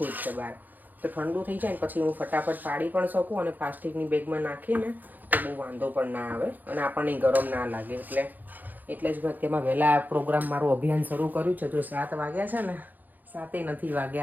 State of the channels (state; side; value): late; left; 0.085 ms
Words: જ છે બહાર. તો ઠંડુ થઈ જાય ને પછી હું ફટાફટ પાડી પણ શકું અને પ્લાસ્ટિકની બેગમાં નાખીને તો બહુ વાંધો પણ ના આવે અને આપણને ગરમ ના લાગે. એટલે જ મેં અત્યારમાં વહેલા પ્રોગ્રામ મારું અભિયાન શરૂ કર્યું છે. જો 7 વાગ્યા છે ને, 7 નથી